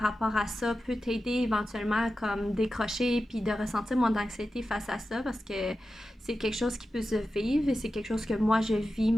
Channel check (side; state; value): both; normal; correlation 0.92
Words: à ça peut t'aider éventuellement à comme décrocher puis de ressentir moins d'anxiété face à ça, parce que c'est quelque chose qui peut se vivre et c'est quelque chose que moi je vis